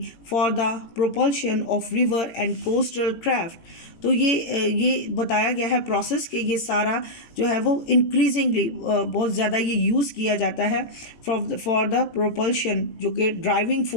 for the propulsion of river and coastal craft. तो ये बताया गया है प्रोसेस कि ये सारा जो है वो इंक्रीजिंगली बहुत ज़्यादा ये यूज़ किया जाता है फॉर द प्रोपल्शन, जो कि ड्राइविंग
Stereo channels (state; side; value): late; right; 17 ms